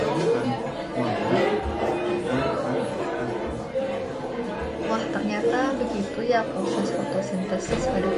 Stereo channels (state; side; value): identical; both; correlation 1.00